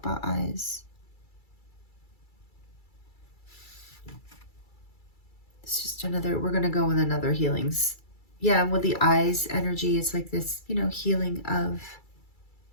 about eyes. It's just another, we're going to go with another healings. Yeah, with the eyes energy, it's like this, you know, healing of,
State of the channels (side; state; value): right; late; 2.3 ms